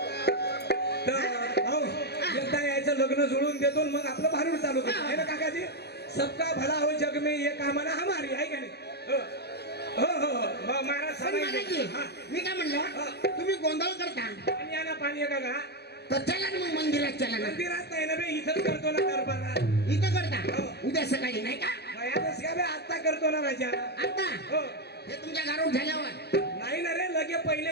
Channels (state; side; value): late; right; 0.48 ms